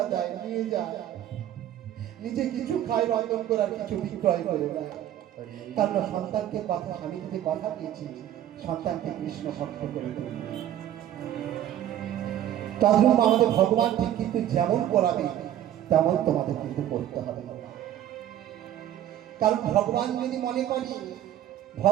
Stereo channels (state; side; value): quieter; left; 11.7 dB